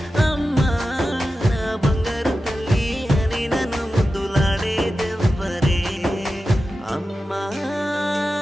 అమ్మా, నా బంగారు తల్లి అని నన్ను ముద్దులాడేదెవ్వరే. అమ్మా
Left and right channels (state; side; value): normal; both; correlation 0.92